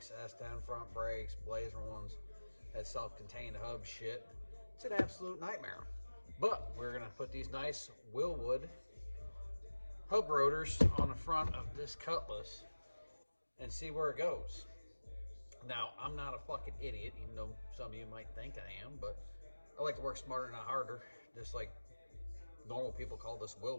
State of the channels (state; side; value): inverted; both; correlation -1.00